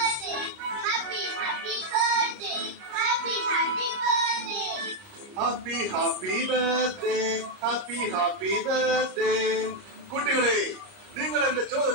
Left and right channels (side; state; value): left; late; 30 ms